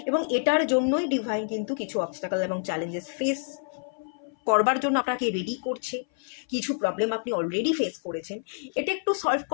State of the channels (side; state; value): right; silent; 58 dB below the other